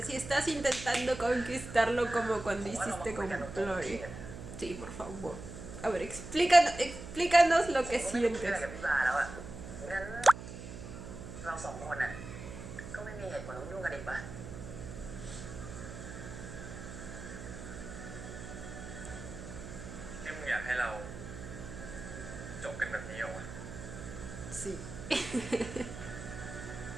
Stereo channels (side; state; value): right; noise; hum, 10 dB below the sound